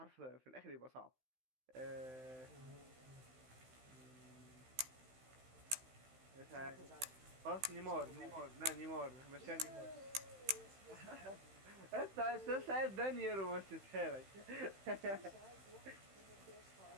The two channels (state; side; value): late; left; 15 ms